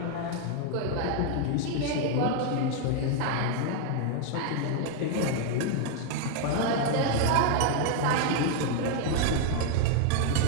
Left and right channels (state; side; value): different; both; correlation 0.00